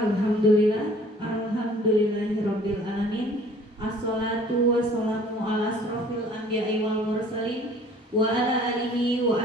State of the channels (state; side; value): normal; both; correlation 0.52